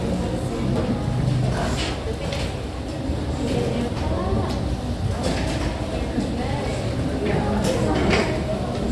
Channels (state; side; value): identical; both; correlation 1.00